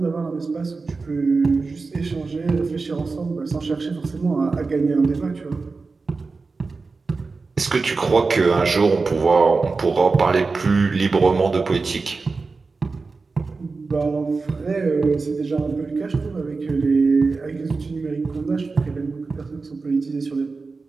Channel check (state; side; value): quieter; left; 4.1 dB